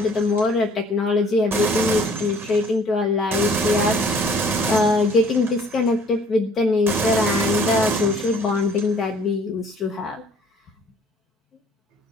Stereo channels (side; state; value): both; normal; correlation 0.55